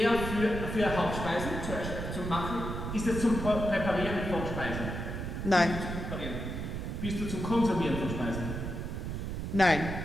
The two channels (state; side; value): noise; right; rumble, 5 dB below the sound